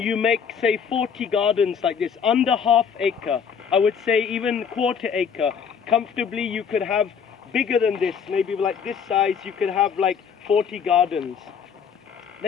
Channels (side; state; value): right; quieter; 6.9 dB